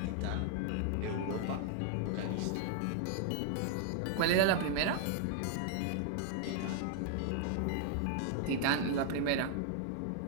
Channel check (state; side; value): different; both; correlation -0.01